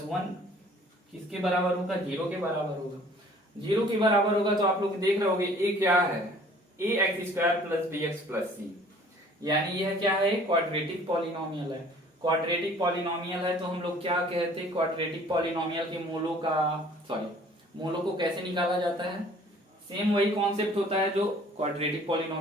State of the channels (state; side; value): normal; both; correlation 0.53